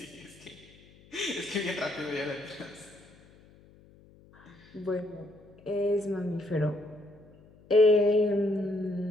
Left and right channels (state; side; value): noise; left; hum, 26 dB below the sound